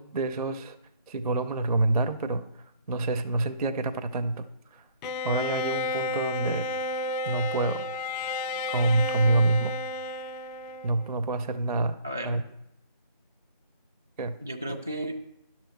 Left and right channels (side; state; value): both; inverted; correlation -0.58